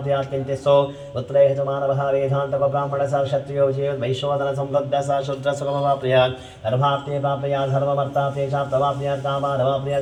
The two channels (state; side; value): identical; both; correlation 1.00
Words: किञ्चित्सो पुत्रेह च मानवः वेदान्तको ब्राह्मणः स क्षत्रियो वैश्वदनसंवृद्धः स शूद्रसुखमवाप्नुयात् गर्भाप्ते प्राप्नुयात् धर्ममर्थाप्ते चाप्तवाप्नुयात्